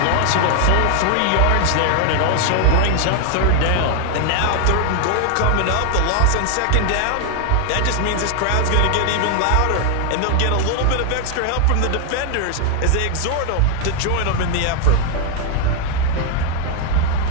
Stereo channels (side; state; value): both; different; correlation 0.00